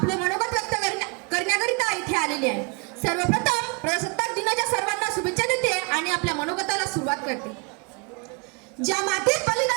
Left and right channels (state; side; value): quieter; left; 32.2 dB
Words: मनोगत व्यक्त करण्याकरिता इथे आलेली आहे. सर्वप्रथम प्रजासत्ताक दिनाच्या सर्वांना शुभेच्छा देते आणि आपल्या मनोगताला सुरुवात करते. ज्या मातीत